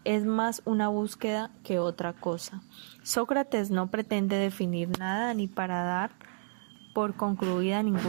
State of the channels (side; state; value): left; silent; 55 dB below the other